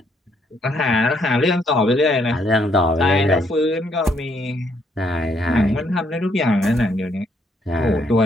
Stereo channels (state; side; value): normal; both; correlation 0.70